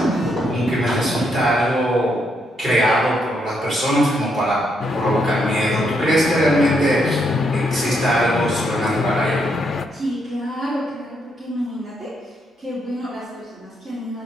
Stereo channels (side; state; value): both; normal; correlation 0.77